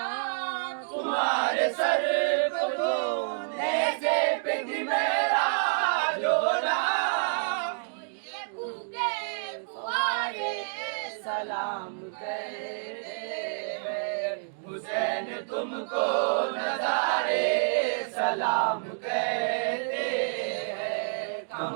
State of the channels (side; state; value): left; silent; digital silence